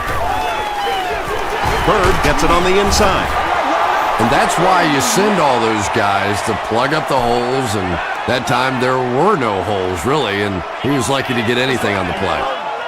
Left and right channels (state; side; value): identical; both; correlation 1.00